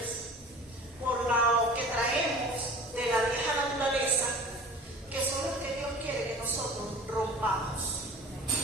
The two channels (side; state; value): both; normal; correlation 0.41